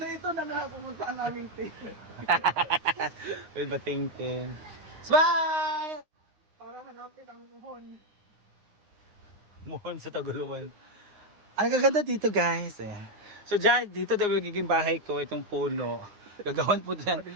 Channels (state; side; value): late; left; 9.8 ms